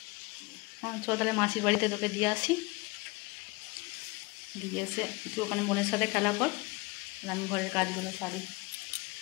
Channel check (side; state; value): right; quieter; 25.1 dB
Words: চল তাহলে মাসির বাড়িতে তোকে দিয়ে আসি, দিয়ে এসে তুই ওখানে বোনের সাথে খেলা কর, আমি ঘরের কাজগুলো সারি